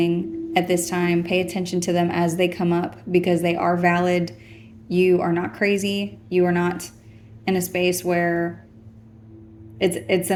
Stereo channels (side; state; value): both; identical; correlation 1.00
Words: at this time, pay attention to them as they come up, because they are valid. You are not crazy. You are not in a space where it's